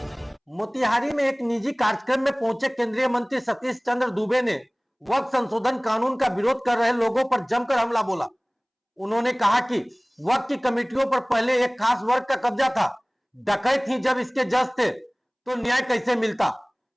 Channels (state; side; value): identical; both; correlation 1.00